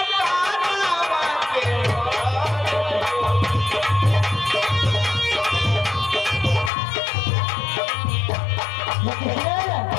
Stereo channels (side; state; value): right; drops out; at 6.7 s